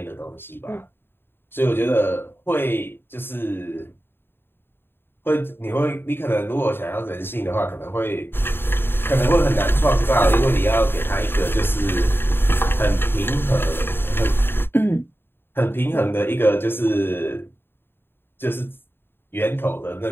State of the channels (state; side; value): late; right; 0.10 ms